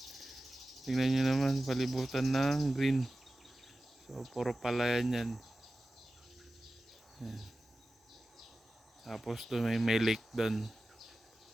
Tingnan nyo naman, palibutan ng green. So, puro palayan yan. Yan. Tapos doon may lake doon.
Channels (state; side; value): normal; both; correlation 0.95